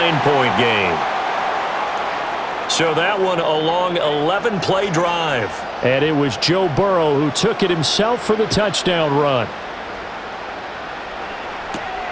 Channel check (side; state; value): both; identical; correlation 1.00